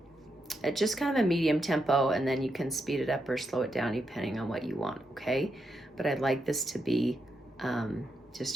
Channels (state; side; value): normal; both; correlation 0.83